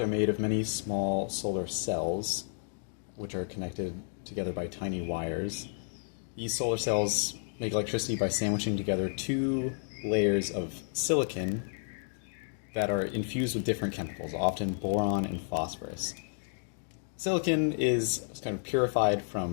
made of many small solar cells, which are connected together by tiny wires. These solar cells make electricity by sandwiching together two layers of silicon that are infused with different chemicals, often boron and phosphorus. Silicon is kind of purified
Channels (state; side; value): silent; right; digital silence